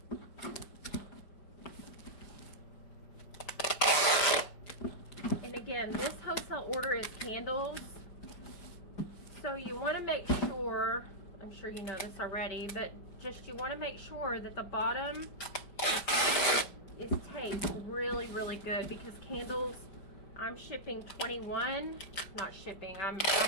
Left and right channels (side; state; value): right; late; 5.1 ms